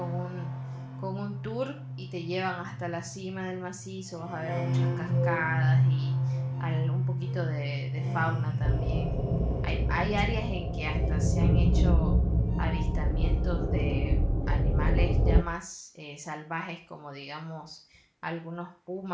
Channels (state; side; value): identical; both; correlation 1.00